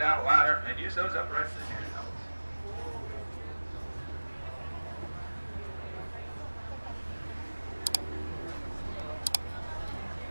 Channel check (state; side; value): inverted; both; correlation -1.00